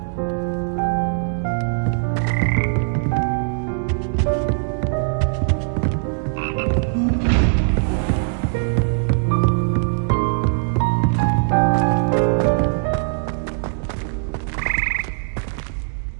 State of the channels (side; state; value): left; silent; digital silence